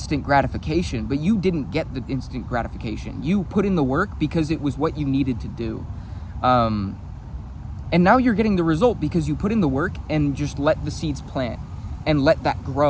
gratification, but you didn't get the instant gratification. You put in the work because it was what you needed to do. And now you're getting the result because you put in the work and just let the seeds plant and let that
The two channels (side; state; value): both; identical; correlation 1.00